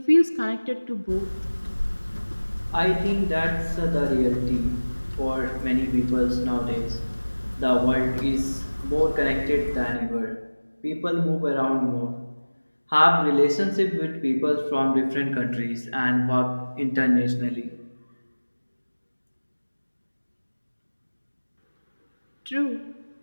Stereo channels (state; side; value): inverted; both; correlation -1.00